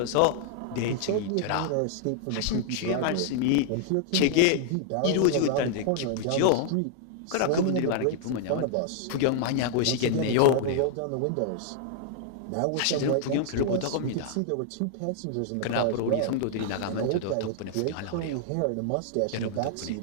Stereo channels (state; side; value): different; both; correlation -0.01